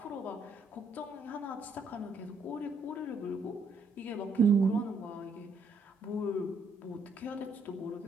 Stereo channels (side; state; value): left; quieter; 3.1 dB